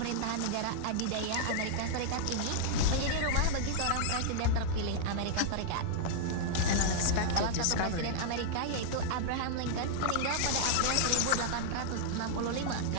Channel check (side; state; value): both; different; correlation -0.01